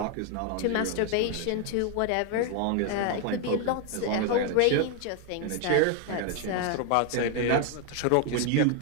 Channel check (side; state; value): both; different; correlation 0.01